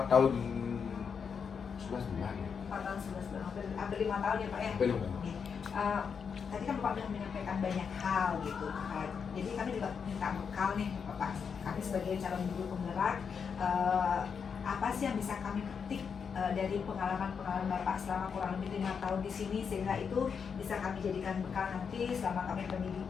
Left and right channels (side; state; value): right; quieter; 6.4 dB